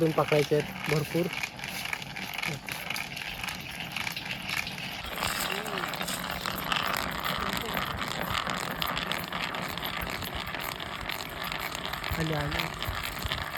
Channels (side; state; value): both; identical; correlation 1.00